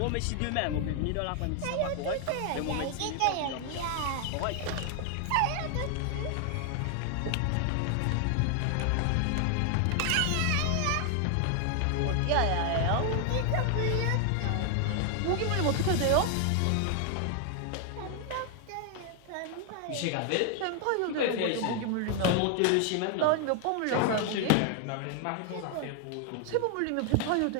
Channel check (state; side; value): different; both; correlation 0.00